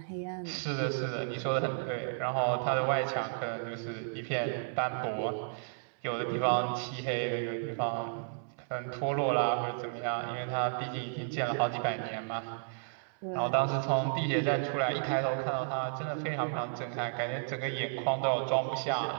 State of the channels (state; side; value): silent; left; 56 dB below the other